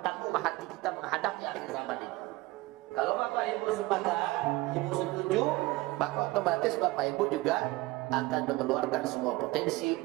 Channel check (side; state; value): left; quieter; 20.4 dB